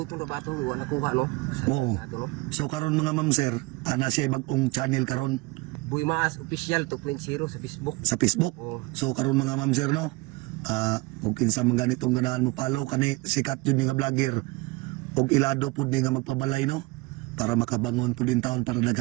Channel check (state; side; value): quieter; left; 22.9 dB